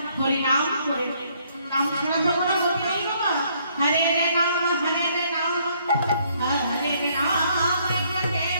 হরিনাম করে, নাম ছাড়া তো কোনো গতি নেই বাবা। হরে রে নাম, হরে রে নাম, হরে রে নাম,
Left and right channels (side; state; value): both; inverted; correlation -0.67